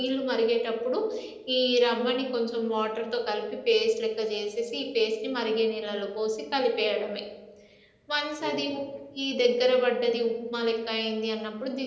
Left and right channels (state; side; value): identical; both; correlation 1.00